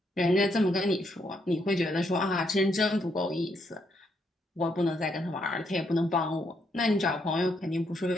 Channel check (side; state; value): both; normal; correlation 0.75